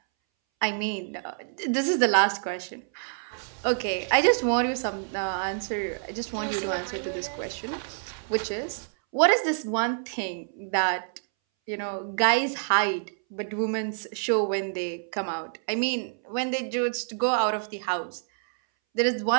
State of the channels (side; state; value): left; silent; 60 dB below the other